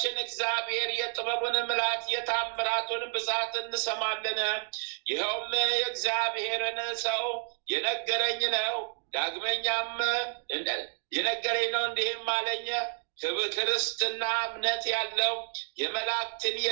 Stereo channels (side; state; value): left; silent; 58 dB below the other